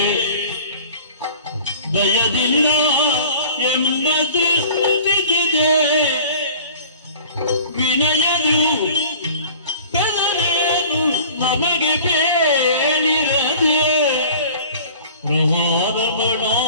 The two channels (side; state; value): both; inverted; correlation -0.45